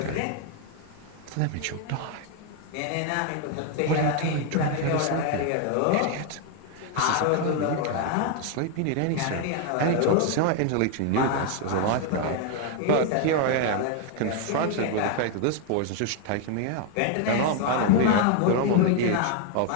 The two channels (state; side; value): different; both; correlation 0.01